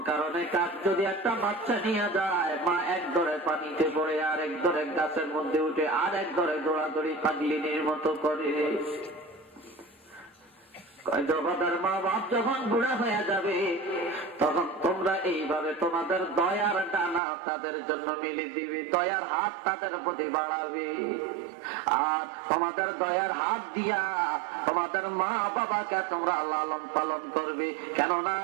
কারণে কাক যদি একটা বাচ্চা নিয়ে যায়, মা এক ধরে পানিতে পড়ে, আর এক ধরে গাছের মধ্যে উঠে, আর এক ধরে দৌড়াদৌড়ি পাগলিনীর মতো করে। মা বাপ যখন বুড়া হয়ে যাবে, তখন তোমরা এইভাবে তোমাদের দয়ার ডানা তাদের জন্য মিলে দিবে, দয়ার হাত তাদের প্রতি বাড়াবে। আর তোমাদের দয়ার হাত দিয়া তোমাদের মা বাবাকে তোমরা লালন পালন করবে। কেননা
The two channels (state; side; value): drops out; left; at 17.2 s